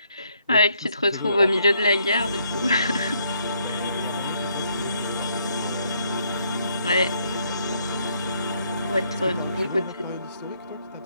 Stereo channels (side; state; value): both; inverted; correlation -0.71